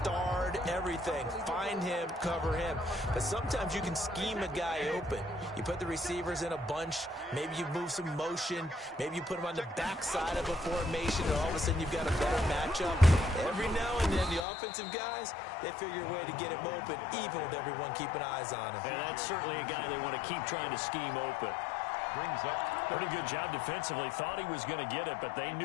everything. Find him, cover him. But sometimes you can scheme a guy open. You put the receivers in a bunch, maybe you move some motion, maybe you put them on the backside of a formation, and all of a sudden you've got a better matchup. Every now and then, the offensive guys, they figure a way to get him open, even with everyone keeping eyes on him. And that's certainly a guy they want to keep trying to scheme open. Brings up pretty good job defensively. Thought he was going to get it, but they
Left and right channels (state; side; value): drops out; right; at 14.5 s